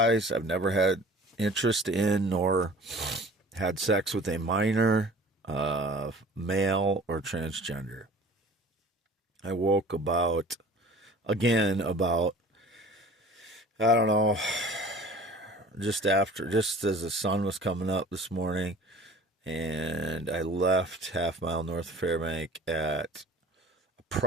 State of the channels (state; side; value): normal; both; correlation 0.45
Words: I've never had interest in nor had sex with a minor, male, or transgender. I woke about, I don't know, just as the sun was coming up this morning, and I left half mile north of Fairbank at